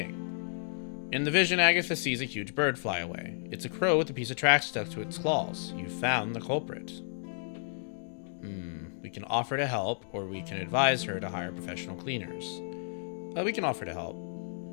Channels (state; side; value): silent; right; digital silence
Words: In the vision, Agatha sees a huge bird fly away. It's a crow with a piece of trash stuck to its claws. You found the culprit. We can offer to help, or we can advise her to hire professional cleaners. We can offer to help.